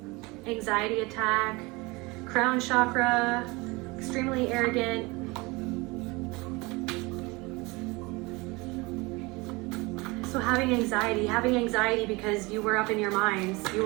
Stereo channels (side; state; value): left; quieter; 24.5 dB